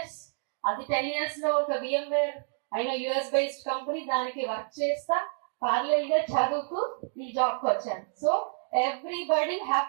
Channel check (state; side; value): silent; left; digital silence